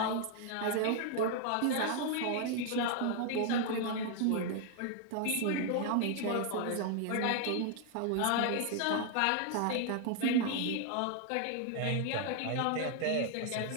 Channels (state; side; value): different; both; correlation 0.00